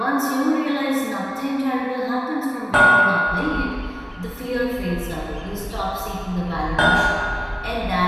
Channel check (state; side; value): identical; both; correlation 1.00